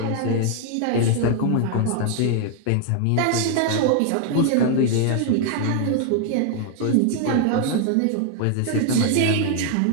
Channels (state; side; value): different; both; correlation 0.00